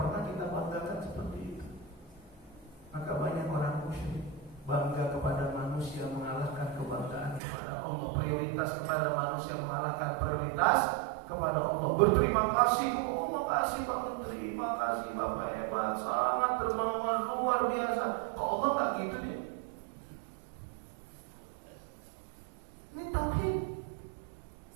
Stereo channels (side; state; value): left; drops out; at 7.4 s